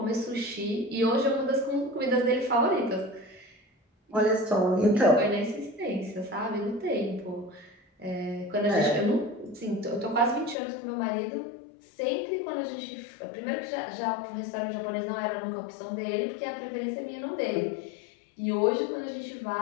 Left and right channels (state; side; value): drops out; right; at 10.6 s